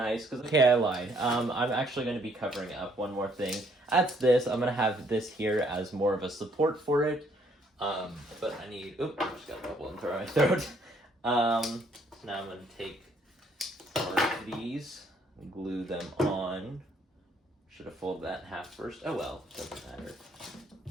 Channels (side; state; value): both; normal; correlation 0.67